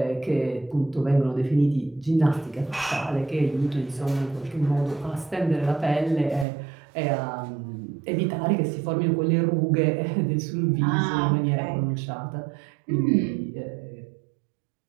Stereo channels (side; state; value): left; drops out; at 6.5 s